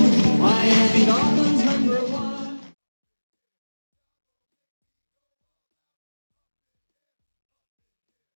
Miami Dolphins #1.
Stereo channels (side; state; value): both; inverted; correlation -1.00